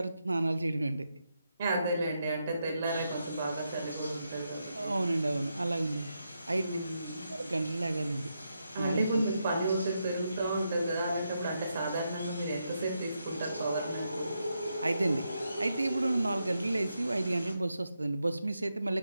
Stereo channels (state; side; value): inverted; both; correlation -0.83